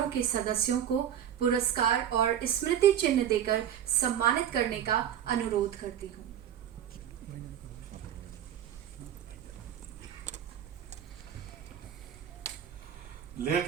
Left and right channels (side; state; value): left; quieter; 10.0 dB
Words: के सदस्यों को पुरस्कार और स्मृति चिन्ह देकर सम्मानित करने का अनुरोध करती हूँ। Late